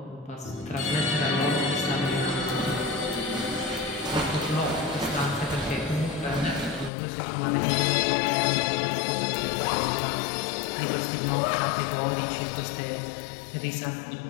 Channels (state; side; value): drops out; right; at 6.9 s